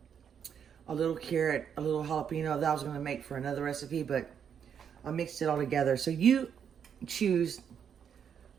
a little carrot, a little jalapeno that I was going to make for another recipe, but I mixed it all together. So you choose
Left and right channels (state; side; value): quieter; left; 7.9 dB